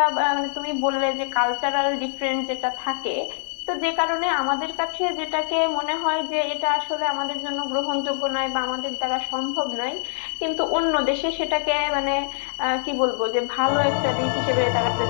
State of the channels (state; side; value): silent; right; digital silence